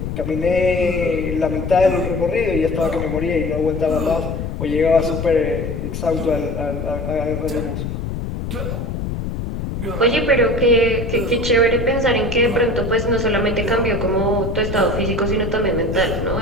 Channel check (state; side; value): noise; left; rumble, 4 dB below the sound